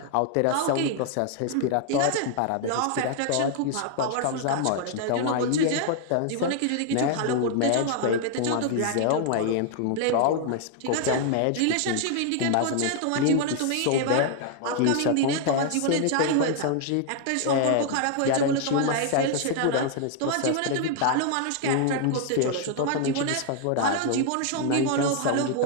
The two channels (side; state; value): both; different; correlation 0.00